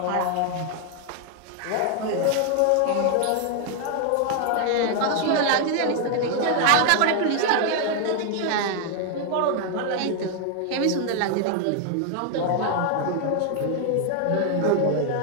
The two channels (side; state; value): both; different; correlation 0.00